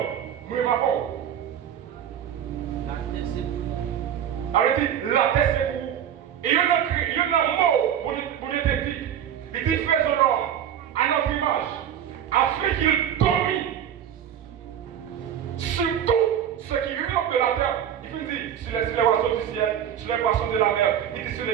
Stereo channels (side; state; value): left; quieter; 9.6 dB